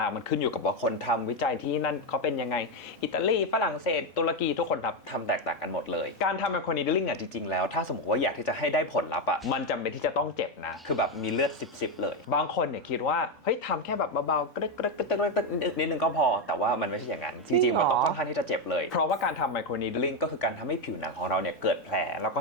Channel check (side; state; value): both; normal; correlation 0.08